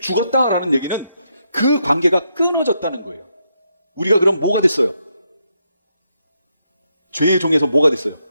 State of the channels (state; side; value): inverted; both; correlation -0.79